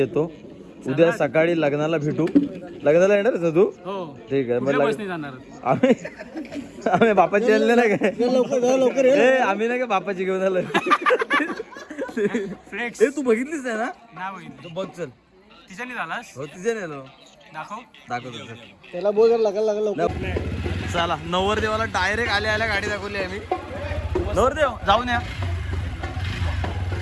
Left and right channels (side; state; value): both; identical; correlation 1.00